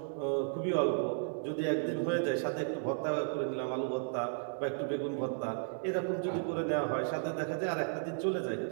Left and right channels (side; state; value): left; silent; digital silence